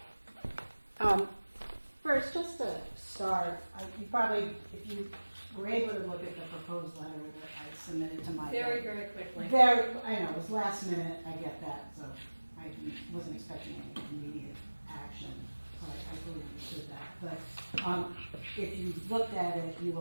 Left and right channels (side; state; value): both; inverted; correlation -1.00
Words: First, just to start, you probably, if you were able to look at the proposed letter that I submitted to Michael. Very, very quickly. I know, it was last minute, I get that, so I wasn't expecting any immediate action. So I fully understood that. But if you looked at it, you